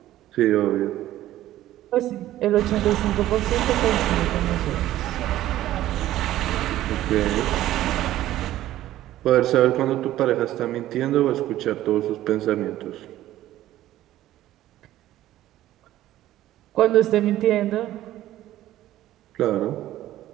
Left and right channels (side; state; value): left; quieter; 14.1 dB